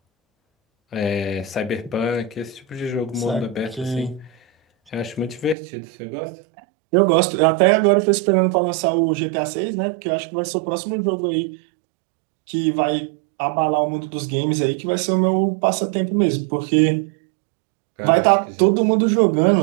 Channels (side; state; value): left; drops out; at 5.6 s